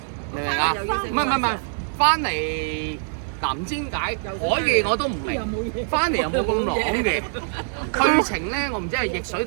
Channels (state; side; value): silent; left; 63 dB below the other